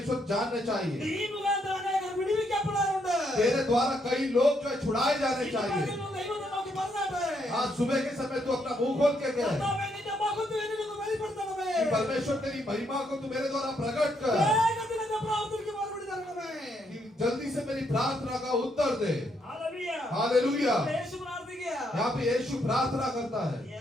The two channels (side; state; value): both; normal; correlation 0.75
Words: जानने चाहिए, ഈ മുഖാന്തരം അനേകർ വിടുവിക്കപ്പെടാറുണ്ട്. तेरे द्वारा कई लोग जो है छुड़ाए जाने ഈ चाहिए। പകലിൽ ദൈവത്തെ നോക്കി പറഞ്ഞാട്ടെ, आज सुबह के समय तू अपना मुंह खोल के कहे കർത്താവേ, നിന്റെ മഹത്വം എന്നിലൊന്ന് വെളിപ്പെടുത്തണമേ. कि परमेश्वर तेरी महिमा को तू मेरे द्वारा प्रकट कर, വേഗത്തിൽ എന്റെ പ്രാർത്ഥനയ്ക്ക് മറുപടി തരണമേ. कि जल्दी से मेरी प्रार्थना का उत्तर दे। ഹല്ലേലൂയ. हालेलुया। യേശു പ്രാർത്ഥിക്കുക. यहाँ पे यीशु प्रार्थना करता है,